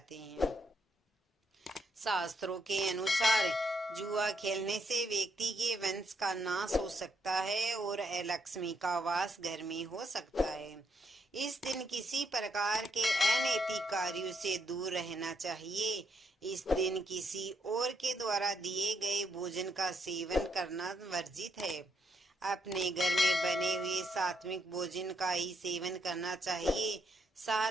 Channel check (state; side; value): normal; both; correlation 0.76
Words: हैं। शास्त्रों के अनुसार जुआ खेलने से व्यक्ति के वंश का नाश हो सकता है और अलक्ष्मी का वास घर में हो सकता है। इस दिन किसी प्रकार के अनैतिक कार्यों से दूर रहना चाहिए। इस दिन किसी और के द्वारा दिए गए भोजन का सेवन करना वर्जित है। अपने घर में बने हुए सात्विक भोजन का ही सेवन करना चाहिए।